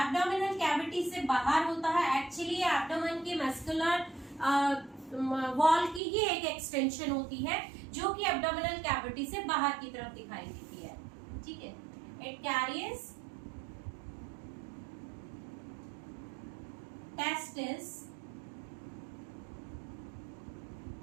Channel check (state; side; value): drops out; left; at 6.0 s